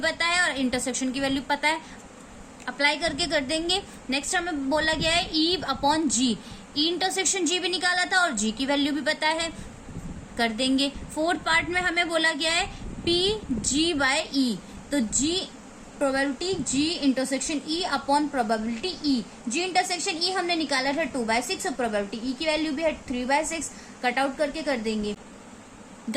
है और इंटरसेक्शन की वैल्यू पता है। अप्लाई करके कर देंगे। नेक्स्ट हमें बोला गया है ई अपॉन जी, ई इंटरसेक्शन जी भी निकाला था और जी की वैल्यू भी पता है, कर देंगे। फोर्थ पार्ट में हमें बोला गया है पी जी बाय ई, तो G probability G intersection E upon probability E. G intersection E हमने निकाला था 2/6 और प्रोबेबिलिटी ई की वैल्यू भी है 3/6। कट आउट करके कर देंगे।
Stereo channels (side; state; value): both; identical; correlation 1.00